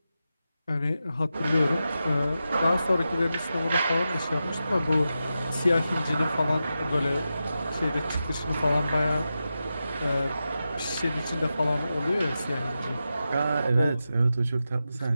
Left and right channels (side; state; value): both; inverted; correlation -0.91